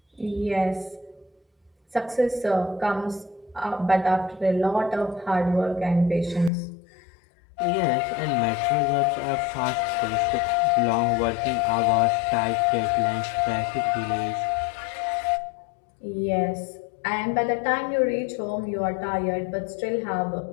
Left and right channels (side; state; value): right; drops out; at 6.5 s